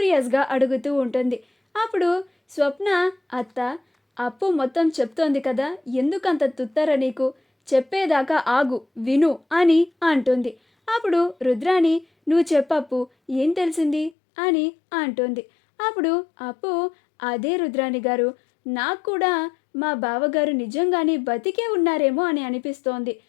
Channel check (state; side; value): drops out; right; at 14.2 s